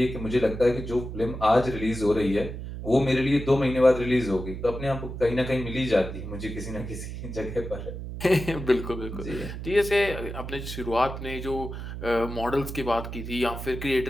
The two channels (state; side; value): noise; right; hum, 8 dB below the sound